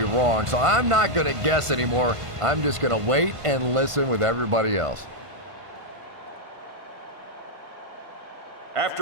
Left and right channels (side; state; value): left; late; 1.5 ms